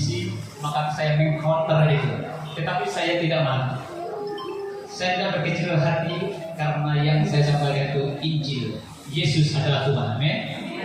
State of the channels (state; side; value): identical; both; correlation 1.00